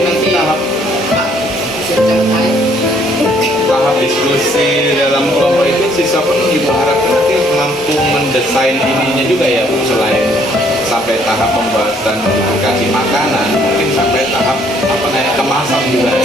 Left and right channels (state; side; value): normal; both; correlation 0.64